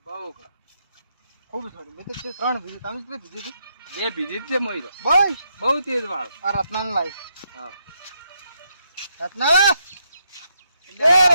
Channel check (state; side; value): inverted; both; correlation -0.79